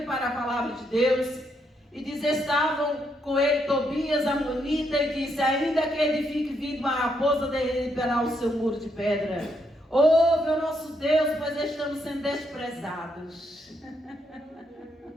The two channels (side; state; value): both; normal; correlation 0.77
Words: para a palavra de Deus, e diz, estavam com ele Tobias, Amonita, e disse, ainda que edifique vindo uma raposa, derribará o seu muro de pedra. Ouve o nosso Deus, pois estamos sendo desprezados.